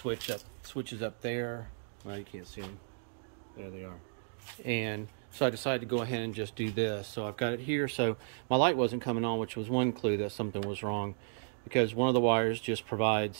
up there. Well, you can't see them. There they are. And so I decided to go ahead and just do this. So I've got it here. So my light wasn't coming on, which was one clue that something was wrong, because one of the wires just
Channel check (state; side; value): silent; left; digital silence